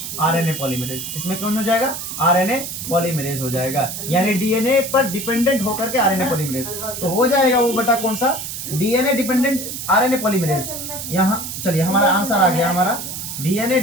RNA polymerase. इसमें कौन हो जाएगा? आरएनए पॉलीमरेज हो जाएगा, यानी डीएनए पर डिपेंडेंट होकर के आरएनए पॉलीमरेज। तो हो जाएगा वो बेटा कौन सा? DNA dependent RNA polymerase. यहाँ चलिए हमारा आंसर आ गया, हमारा डीएनए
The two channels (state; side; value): noise; right; hiss, 7 dB below the sound